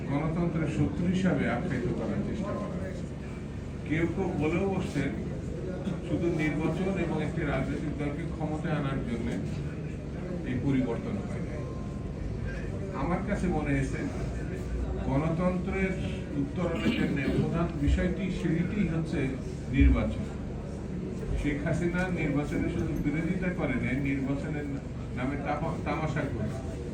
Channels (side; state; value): both; identical; correlation 1.00